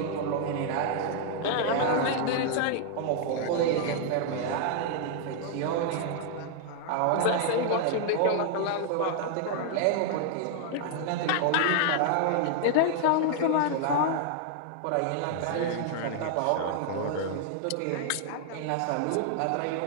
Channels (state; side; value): different; both; correlation -0.01